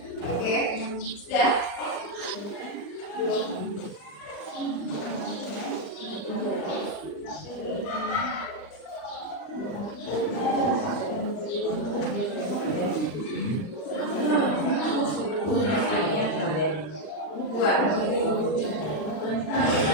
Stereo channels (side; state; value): right; late; 39 ms